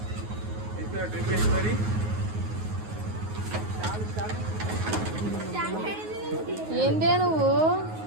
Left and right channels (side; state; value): left; late; 9.5 ms